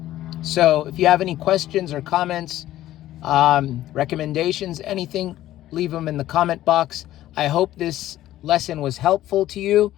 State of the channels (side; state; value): right; quieter; 14.0 dB